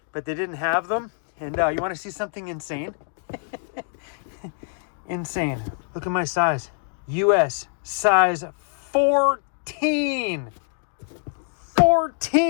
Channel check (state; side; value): silent; right; 60 dB below the other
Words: but they didn't have them. And you wanna see something insane? Insane. Look at my size. US size 14.